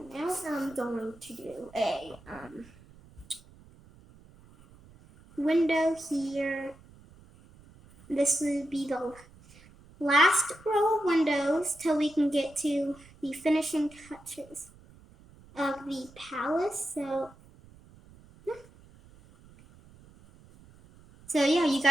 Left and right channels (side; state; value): right; noise; rumble, 24 dB below the sound